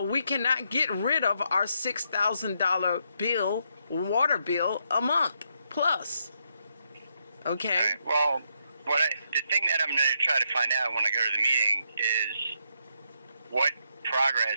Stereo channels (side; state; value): both; inverted; correlation -0.78